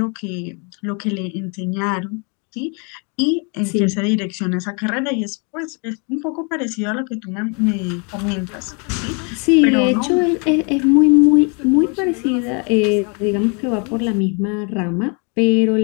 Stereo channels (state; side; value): quieter; right; 35.2 dB